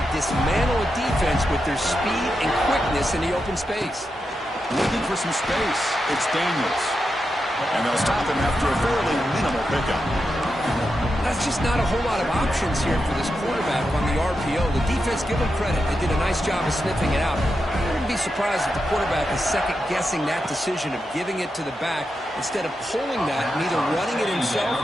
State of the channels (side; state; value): both; normal; correlation 0.87